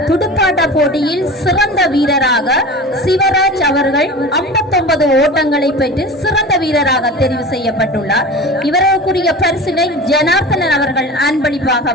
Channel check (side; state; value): both; normal; correlation 0.34